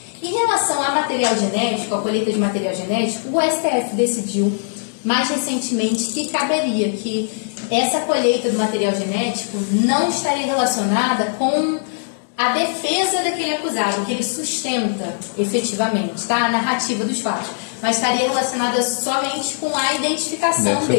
Em relação a material genético, a colheita de material genético, o STF decidiu mais recentemente que caberia, que essa colheita do material genético não estaria relacionada com a defesa daquele acusado, que ele sustenta efetivamente, tá? A narrativa dos fatos, mas estaria relacionada somente com a identificação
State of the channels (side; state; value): right; silent; digital silence